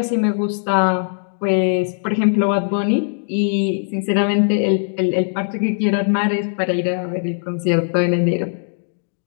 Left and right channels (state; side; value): silent; right; digital silence